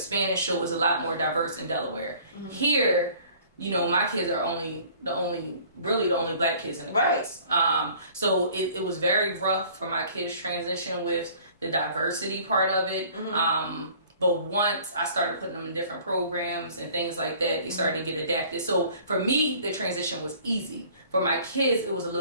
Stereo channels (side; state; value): both; inverted; correlation -0.52